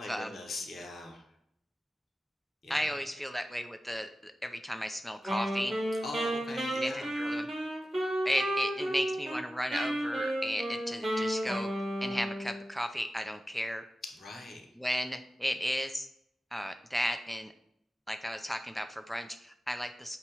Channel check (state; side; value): normal; both; correlation 0.94